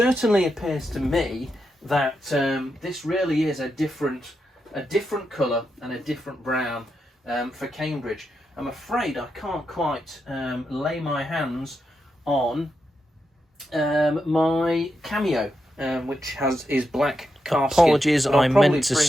appears to me that this really is a different colour and a different brown for Cambridge. I'm afraid I can't quite lay my hands on my cameo, which is black calf skin. Apologies, I meant to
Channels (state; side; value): normal; both; correlation 0.85